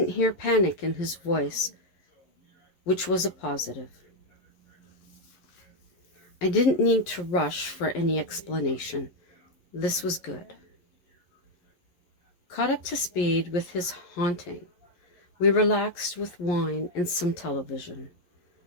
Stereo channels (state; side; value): late; right; 11 ms